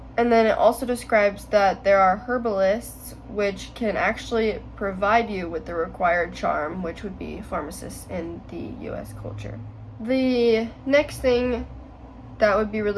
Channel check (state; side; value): identical; both; correlation 1.00